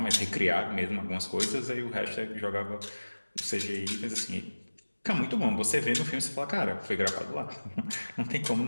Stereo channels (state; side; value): inverted; both; correlation -1.00